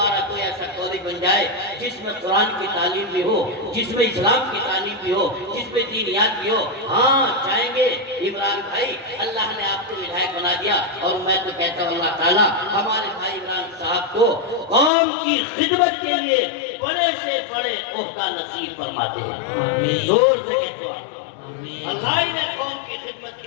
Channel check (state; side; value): drops out; right; at 14.9 s